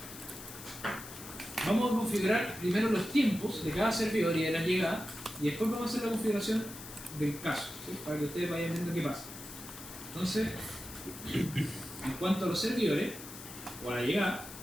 Vamos a configurar primero los tiempos de cada servidor y de la llegada, y después vamos a hacer la configuración del caso, ¿sí? Para que ustedes vayan viendo qué pasa. Entonces, en cuanto a los servidores, o a la llegada,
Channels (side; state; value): left; noise; hiss, 13 dB below the sound